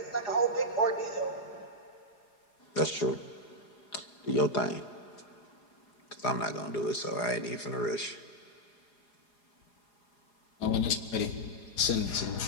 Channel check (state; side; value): late; right; 4.8 ms